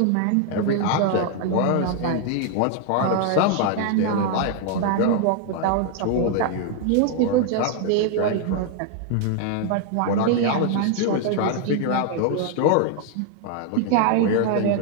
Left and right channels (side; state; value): both; different; correlation 0.00